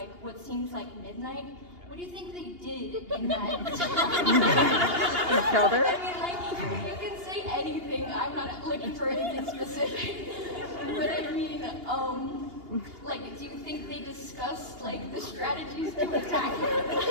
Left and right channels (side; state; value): left; late; 2.8 ms